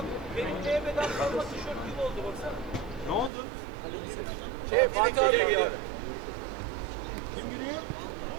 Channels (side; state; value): left; drops out; at 3.3 s